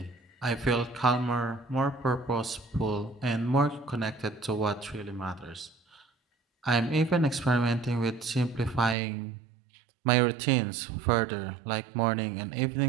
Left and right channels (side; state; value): left; drops out; at 9.0 s